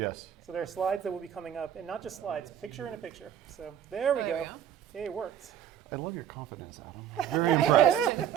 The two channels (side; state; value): left; quieter; 9.9 dB